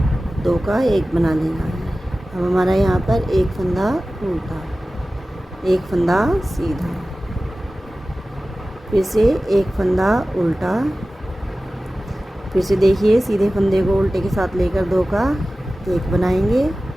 2 का 1 बना लेना है। अब हमारा यहाँ पर एक फंदा उल्टा, एक फंदा सीधा, फिर से एक फंदा उल्टा, फिर से देखिए सीधे फंदे को उल्टे के साथ लेकर 2 का 1 बनाएंगे,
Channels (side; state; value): both; normal; correlation 0.96